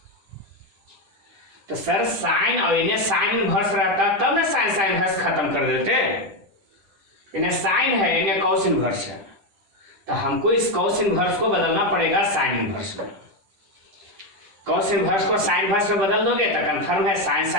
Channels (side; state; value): left; late; 10 ms